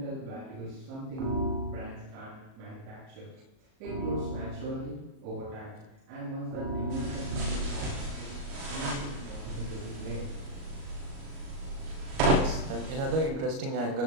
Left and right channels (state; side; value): late; left; 37 ms